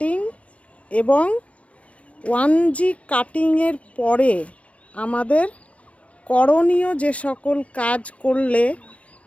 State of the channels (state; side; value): late; right; 0.064 ms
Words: এবং 1G কাটিংয়ের পরে আমাদের করণীয় যে সকল কাজ করলে